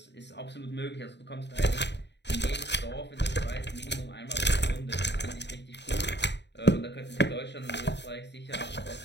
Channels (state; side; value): late; right; 0.51 ms